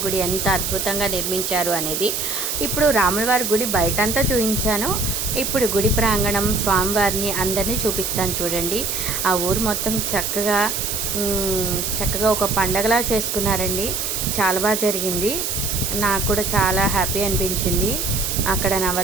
గుడి ఎంత అద్భుతంగా నిర్మించారు అనేది. ఇప్పుడు రాములవారి గుడి బయటంతా చూపించాను, ఇప్పుడు గుడి ప్రాంగణం స్వామివారిని అందరినీ చూపిస్తాను చూడండి. ఆ ఊరు మొత్తం చక్కగా ఒక పండగలా చేసుకున్నారండి. చాలా బాగా జరిగింది, నాకు కూడా చాలా హ్యాపీ అనిపించింది. అక్కడ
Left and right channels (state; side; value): noise; right; hiss, 2 dB below the sound